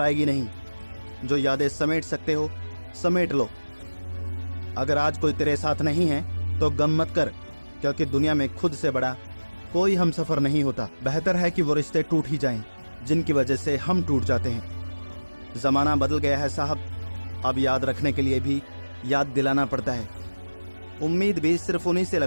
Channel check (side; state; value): both; inverted; correlation -1.00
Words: नहीं। जो यादें समेट सकते हो समेट लो। अगर आज कोई तेरे साथ नहीं है तो गम मत कर, क्योंकि दुनिया में खुद से बड़ा कोई हमसफर नहीं होता। बेहतर है कि वो रिश्ते टूट ही जाएं जिनकी वजह से हम टूट जाते हैं। जमाना बदल गया है साहब, अब याद रखने के लिए भी याद दिलाना पड़ता है। उम्मीद भी सिर्फ उन्हीं से